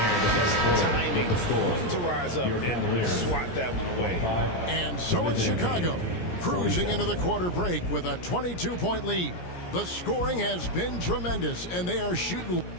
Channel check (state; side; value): late; right; 17 ms